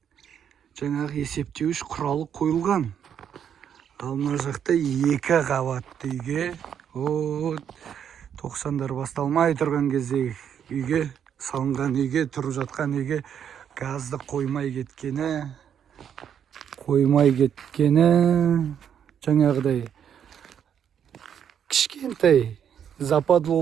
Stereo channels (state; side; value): quieter; left; 8.6 dB